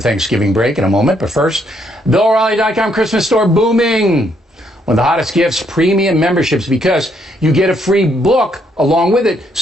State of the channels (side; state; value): both; normal; correlation 0.72